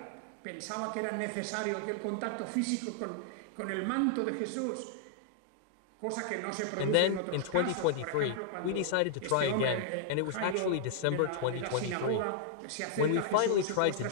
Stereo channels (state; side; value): different; both; correlation -0.01